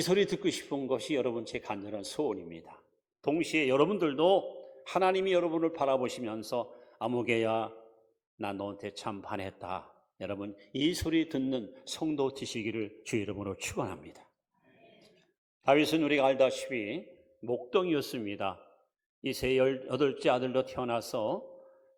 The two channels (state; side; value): identical; both; correlation 1.00